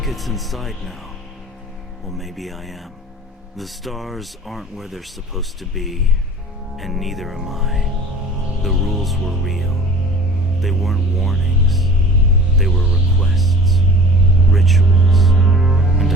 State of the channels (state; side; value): normal; both; correlation 0.44